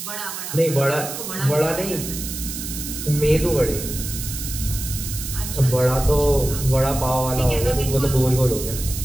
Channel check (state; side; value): noise; right; hiss, 7 dB below the sound